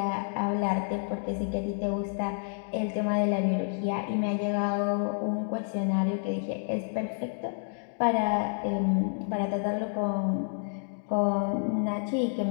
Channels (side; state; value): right; silent; 58 dB below the other